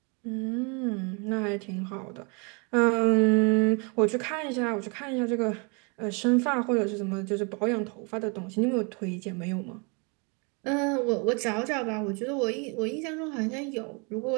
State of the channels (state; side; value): quieter; left; 33.1 dB